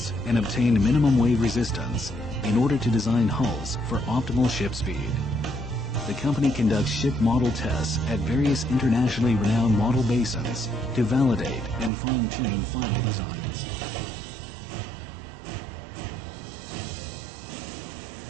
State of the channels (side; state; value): left; drops out; at 11.9 s